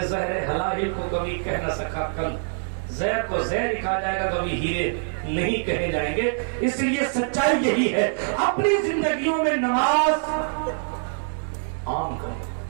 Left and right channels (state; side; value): silent; left; 62 dB below the other